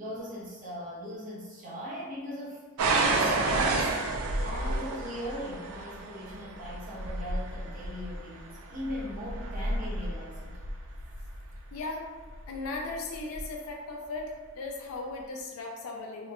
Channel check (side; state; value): both; normal; correlation 0.24